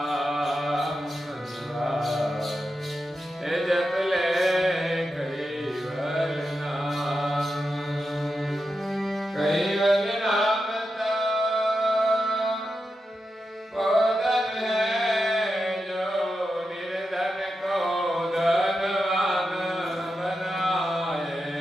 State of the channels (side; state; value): both; normal; correlation 0.89